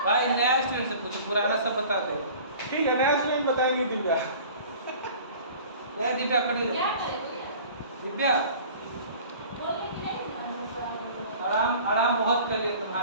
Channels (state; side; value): inverted; both; correlation -0.44